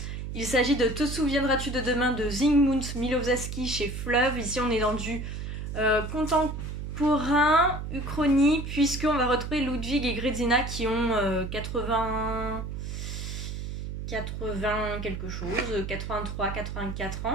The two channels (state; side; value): noise; right; hum, 6 dB below the sound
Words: Il s'agit de Te souviendras-tu de demain de Zygmunt Milowski chez Fleuve. Ici on est dans du contemporain, uchronie, puisqu'on va retrouver Ludwig et Grézina qui ont 80 quelque chose, 83, 84